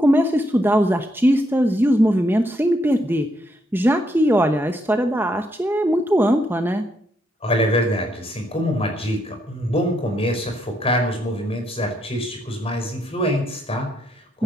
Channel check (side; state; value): both; normal; correlation 0.76